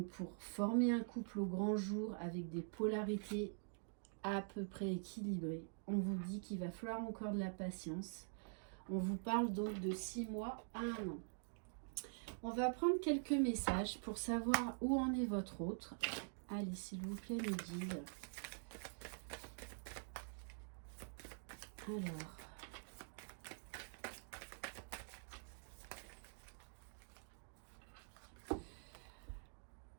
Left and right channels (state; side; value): silent; left; digital silence